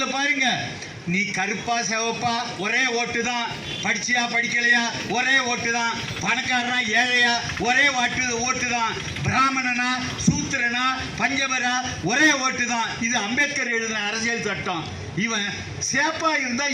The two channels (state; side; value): identical; both; correlation 1.00